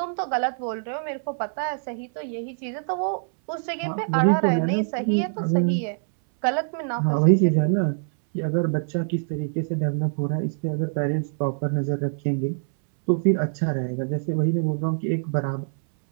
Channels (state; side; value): silent; left; 62 dB below the other